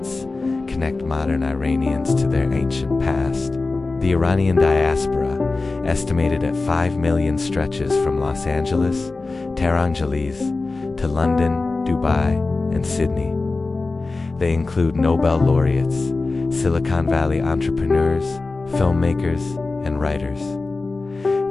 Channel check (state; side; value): quieter; right; 3.6 dB